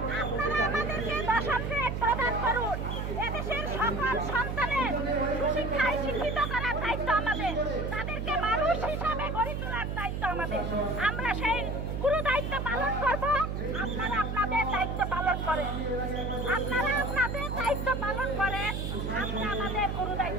আপনারা আমাদেরকে দশম গ্রেড প্রদান করুন, এদেশের সকল সন্তানের সুশিক্ষায় শিক্ষিত করার দায়িত্ব আমাদের, তাদেরকে মানুষ হিসাবে গড়ে তোলার দায়িত্ব আমাদের। আমরা সেই গুরু দায়িত্ব পালন করব। আপনারা আপনাদের দায়িত্ব পালন করেন, আপনারা আপনাদের দায়িত্ব পালন করেন, আমরা আমাদের গুরু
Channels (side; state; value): right; noise; hum, 3 dB below the sound